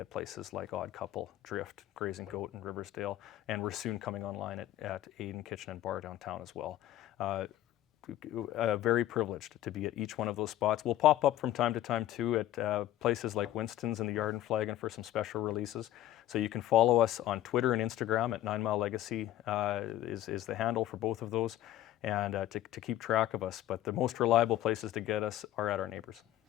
places like Odd Couple, Drift, Grazing Goat, and Riversdale, and we're soon coming online at Aiden Kitchen and Bar downtown as well. Very privileged to be at each one of those spots. We'll pop up from time to time too at places like Winston's and the Yard and Flagon for some special releases. So you can follow us on Twitter and Instagram at 9 Mile Legacy is the handle for both of those, and to keep track of us. But the most reliable places to get us are at our neighbors.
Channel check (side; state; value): right; quieter; 13.4 dB